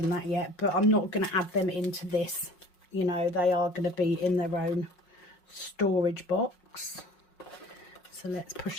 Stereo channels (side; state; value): right; late; 5.5 ms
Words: that yet. But I'm not going to add them into this, you know, they are going to be in their own storage box. So let's